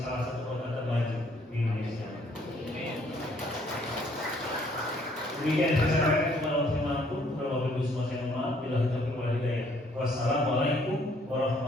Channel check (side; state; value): both; normal; correlation 0.64